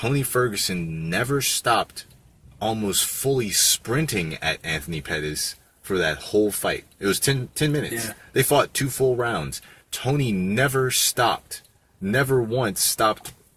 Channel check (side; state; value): both; identical; correlation 1.00